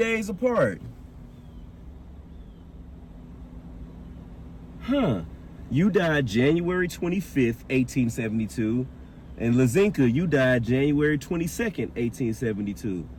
apart. Huh. You died January 25th, 1872. And Lazinka, you died January 22nd, 1872.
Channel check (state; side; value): identical; both; correlation 1.00